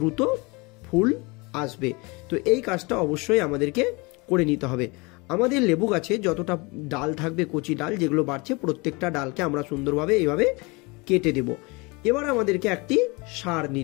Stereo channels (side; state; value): right; quieter; 26.9 dB